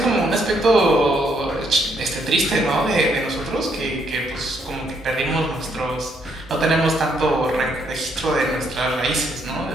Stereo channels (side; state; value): both; normal; correlation 0.72